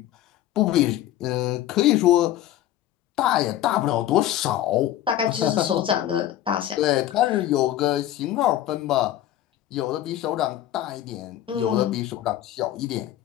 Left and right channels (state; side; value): quieter; right; 12.7 dB